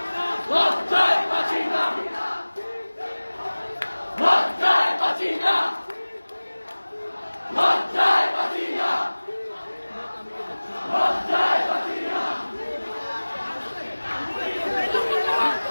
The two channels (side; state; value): both; inverted; correlation -1.00